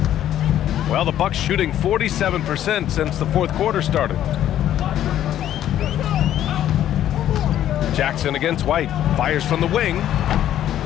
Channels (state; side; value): quieter; right; 11.6 dB